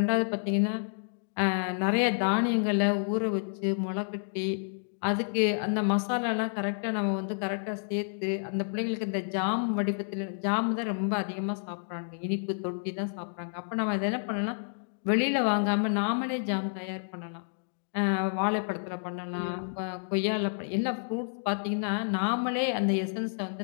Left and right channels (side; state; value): right; silent; digital silence